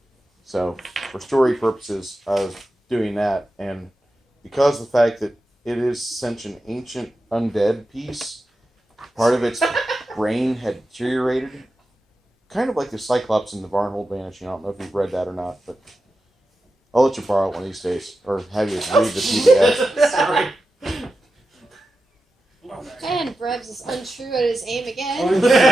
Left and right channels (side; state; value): both; normal; correlation 0.91